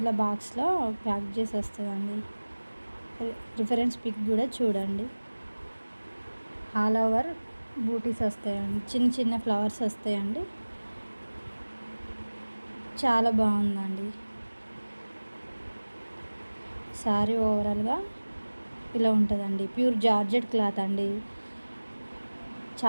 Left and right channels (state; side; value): inverted; both; correlation -1.00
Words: బాక్స్లో ప్యాక్ చేసి వస్తుందండి. రిఫరెన్స్ పిక్ కూడా చూడండి. ఆల్ ఓవర్ బూటీస్ వస్తాయండి, చిన్న చిన్న ఫ్లవర్స్ వస్తాయండి. చాలా బాగుందండి శారీ. ఓవరాల్గా ఇలా ఉంటుందండి. ప్యూర్ జార్జెట్ క్లాత్ అండి,